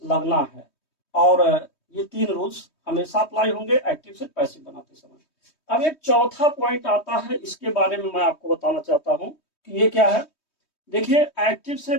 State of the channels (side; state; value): right; late; 3.2 ms